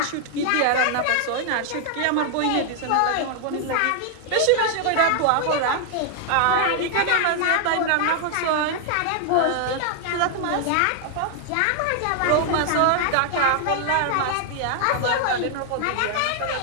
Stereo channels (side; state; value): both; different; correlation 0.00